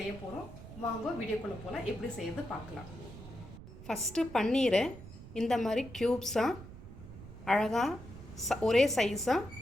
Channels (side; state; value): right; noise; rumble, 15 dB below the sound